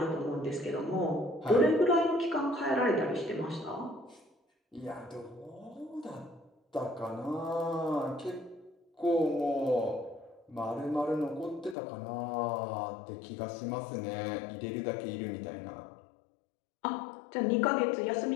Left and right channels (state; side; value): drops out; right; at 11.8 s